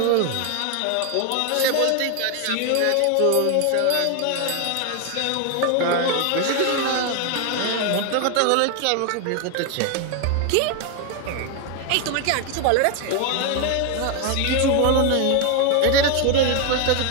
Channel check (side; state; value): both; different; correlation 0.01